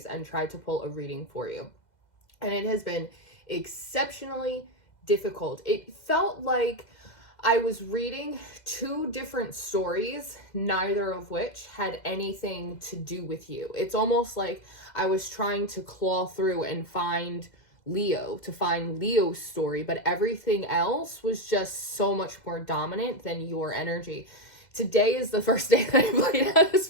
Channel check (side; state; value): right; late; 2.0 ms